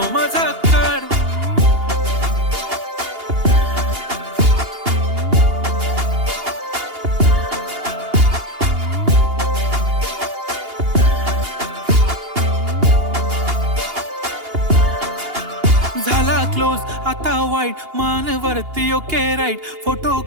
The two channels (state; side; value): late; left; 2.8 ms